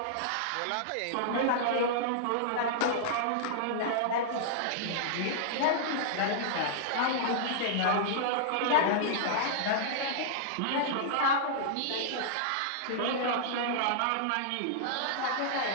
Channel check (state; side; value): different; both; correlation -0.02